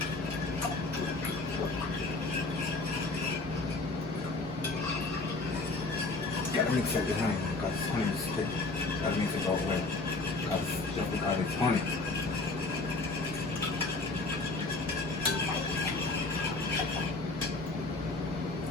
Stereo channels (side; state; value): right; quieter; 3.3 dB